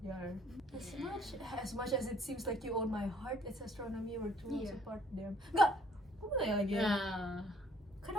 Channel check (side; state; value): both; normal; correlation 0.61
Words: As much as it seems like you own my heart, it's astronomy, we're two worlds Iya. apart. Damn. Enggak. Gue mau tanya lagi. Nah,